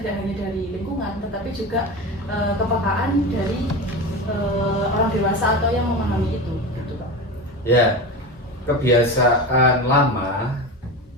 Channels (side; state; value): both; normal; correlation 0.25